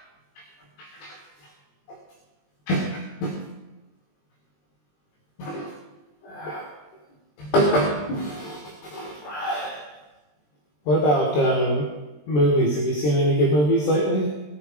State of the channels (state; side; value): late; right; 20 ms